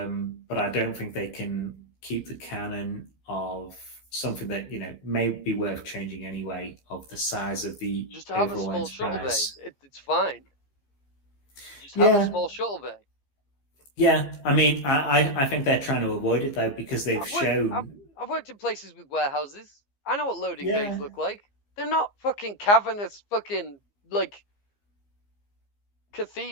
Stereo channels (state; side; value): late; right; 15 ms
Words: I don't think they can keep the canon of something that, may be worth changing anyway, of the size of the just have a small Enterprise. Shuttle bay. It's fine. Just have a small shuttle bay. Yeah, I mean, I think they're trying to avoid it, though, because they've shown... I've worked in places with warehouses. I know what loading bays look like. They're not fucking cavernous fucking,